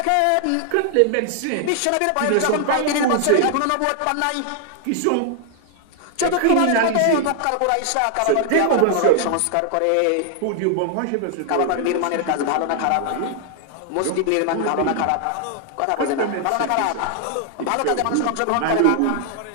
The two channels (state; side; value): different; both; correlation 0.00